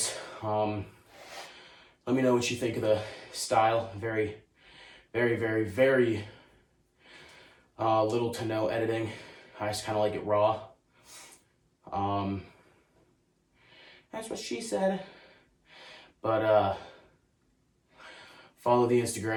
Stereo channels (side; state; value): both; identical; correlation 1.00